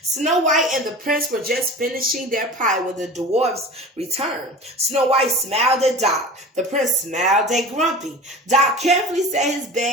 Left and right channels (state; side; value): normal; both; correlation 0.36